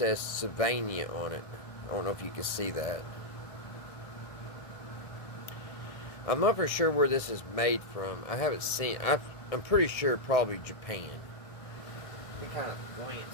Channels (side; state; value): right; late; 1.7 ms